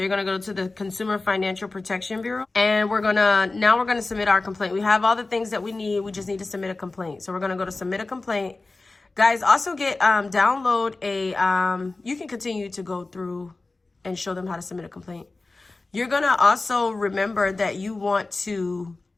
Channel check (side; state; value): right; quieter; 3.4 dB